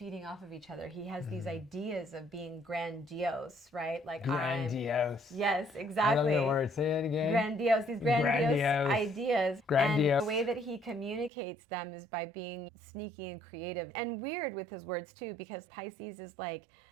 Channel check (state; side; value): drops out; left; at 11.3 s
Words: off of each other. He has these ideas of being grandiose, right? Like grandiose. Yes, exactly. I love the word. Say it again. Grandiose. These grandiose ideas. Grandiose. And the way that he communicates them is by being sneaky and creative and weird with his words too, because Pisces is like,